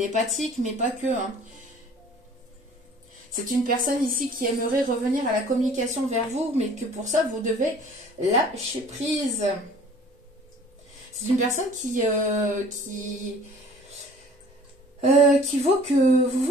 mais pas que, hein. C'est une personne ici qui aimerait revenir à la communication vers vous, mais que pour ça, vous devez lâcher prise. C'est une personne qui vaut que vous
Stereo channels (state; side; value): normal; both; correlation 0.50